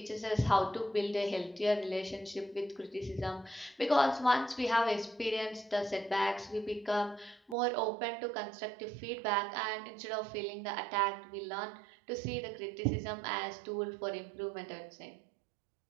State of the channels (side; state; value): left; drops out; at 7.6 s